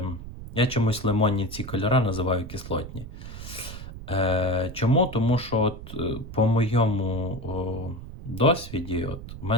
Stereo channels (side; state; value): right; noise; rumble, 11 dB below the sound